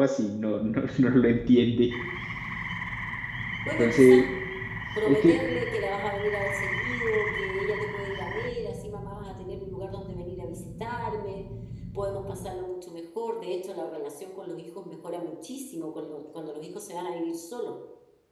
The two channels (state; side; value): identical; both; correlation 1.00